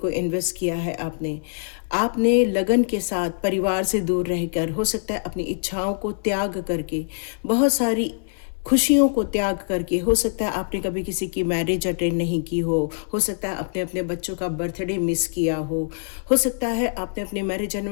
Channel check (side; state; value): right; silent; 63 dB below the other